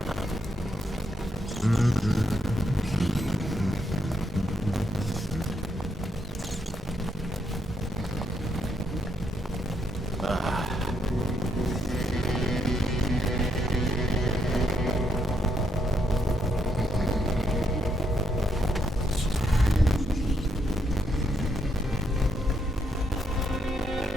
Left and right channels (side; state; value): both; normal; correlation 0.76